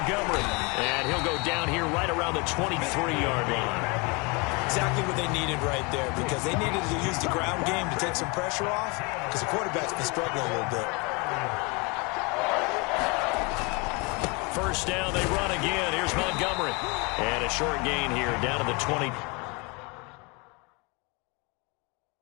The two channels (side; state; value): right; quieter; 29.3 dB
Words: And he'll go down here right around the 23-yard line. Exactly what they needed right there, because they needed to use the ground game to take some pressure off, because the quarterback's been struggling a little bit. First down, they run again. Here's Montgomery. And a short gain here down to the 20.